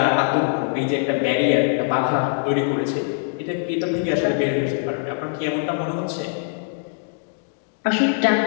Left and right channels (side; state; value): right; silent; digital silence